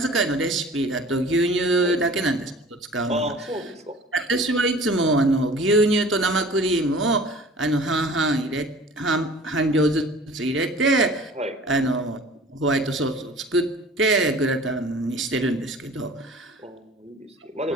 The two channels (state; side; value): normal; both; correlation 0.45